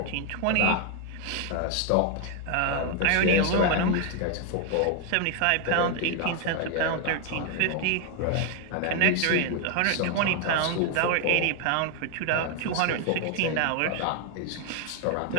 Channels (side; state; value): both; different; correlation 0.01